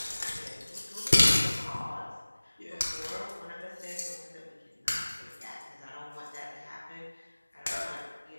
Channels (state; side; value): inverted; both; correlation -1.00